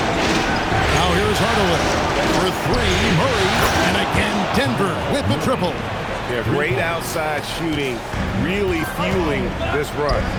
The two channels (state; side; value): identical; both; correlation 1.00